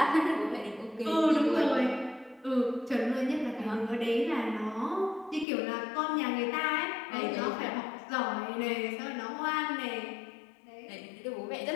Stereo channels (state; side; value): drops out; right; at 5.5 s